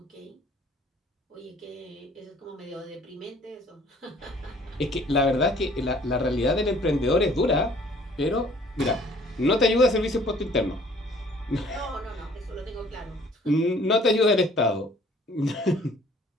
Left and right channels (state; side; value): normal; both; correlation 0.56